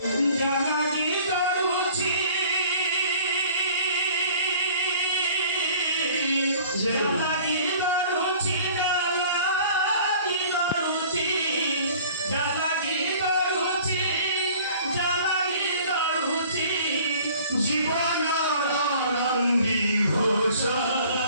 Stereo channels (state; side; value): inverted; both; correlation -0.50